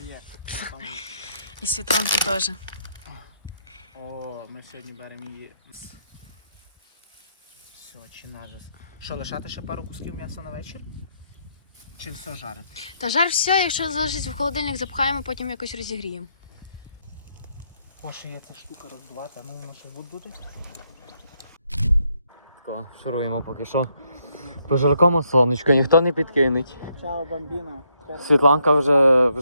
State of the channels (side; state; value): both; inverted; correlation -0.74